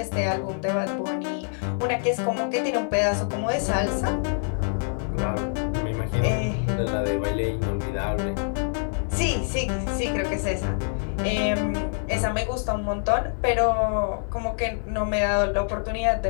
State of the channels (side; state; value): right; silent; digital silence